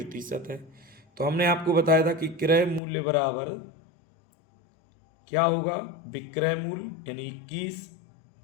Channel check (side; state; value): right; drops out; at 2.8 s